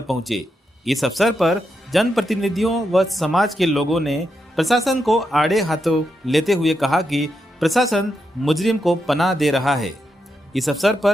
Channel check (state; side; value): normal; both; correlation 0.84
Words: पहुंचे। इस अवसर पर जनप्रतिनिधियों व समाज के लोगों ने प्रशासन को आड़े हाथों लेते हुए कहा कि प्रशासन मुजरिम को पनाह दे रहा है। इस अवसर